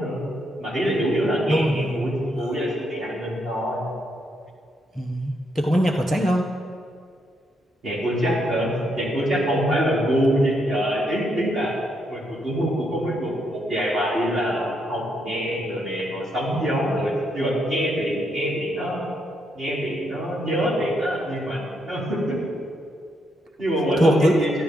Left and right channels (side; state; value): both; normal; correlation 0.77